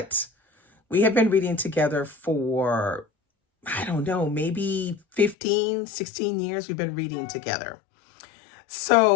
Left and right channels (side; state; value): right; drops out; at 5.4 s